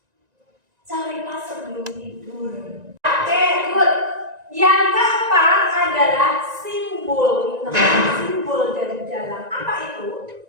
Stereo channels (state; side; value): late; left; 1.9 ms